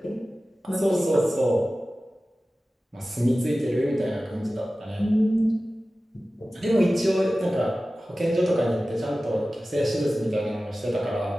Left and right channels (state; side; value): normal; both; correlation 0.96